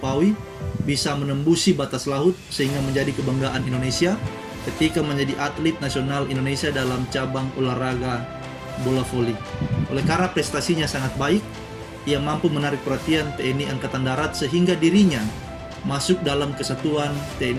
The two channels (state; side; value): identical; both; correlation 1.00